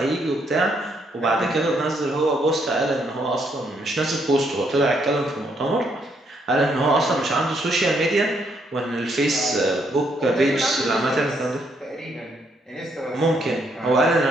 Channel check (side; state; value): both; normal; correlation 0.73